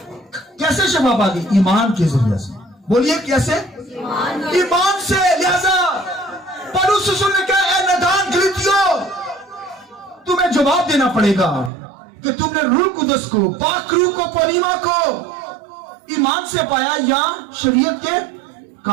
कैसे शफा पा गई? ईमान के जरिए से। बोलिए कैसे? ईमान से। लिहाजा पौलुस रसूल ने कहा, ए नादान गलीतियों, तुम्हें जवाब देना पड़ेगा कि तुमने रूह कुदस को, पाक रूह को, पनीमा को ईमान से पाया या शरीयत के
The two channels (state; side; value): drops out; left; at 11.7 s